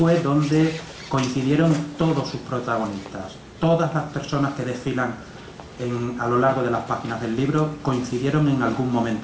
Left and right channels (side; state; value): both; identical; correlation 1.00